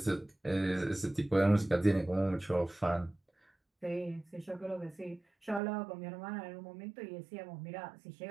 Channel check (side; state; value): left; drops out; at 5.6 s